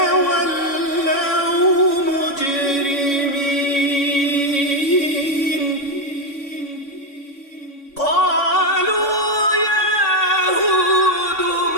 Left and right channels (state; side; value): late; right; 3.6 ms